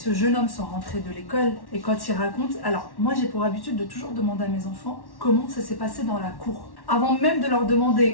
jeune homme sont rentrés de l'école et quand ils racontent. Alors, moi j'ai pour habitude de toujours demander à mes enfants comment ça s'est passé dans la cour. Avant même de leur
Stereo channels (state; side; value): late; right; 1.1 ms